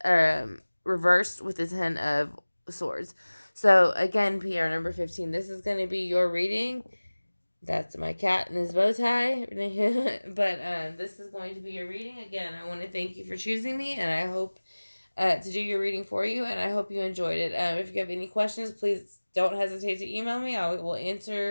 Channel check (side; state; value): both; inverted; correlation -1.00